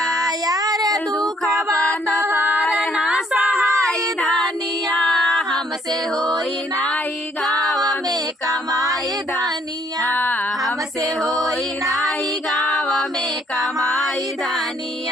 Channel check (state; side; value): normal; both; correlation 0.66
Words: यार दुखवा तोहार ना सहाय धानिया हमसे होई नाही गाँव में कमाई धानिया हमसे होई नाही गाँव में कमाई